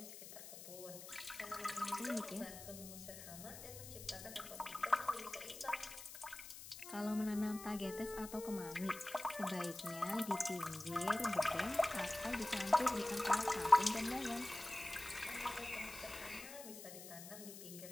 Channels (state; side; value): noise; left; hiss, 12 dB below the sound